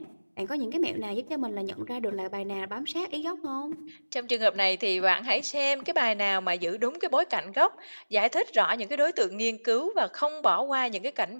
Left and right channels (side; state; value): both; inverted; correlation -1.00